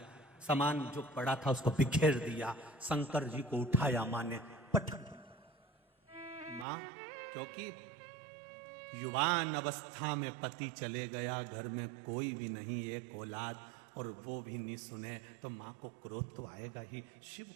सामान जो पड़ा था उसको बिखेर दिया। शंकर जी को उठाया मां ने, पटक। मां, क्योंकि युवान अवस्था में पति चले गया, घर में कोई भी नहीं, एक औलाद, और वो भी नहीं सुने तो मां को क्रोध तो आएगा ही। शिव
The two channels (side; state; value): left; drops out; at 6.7 s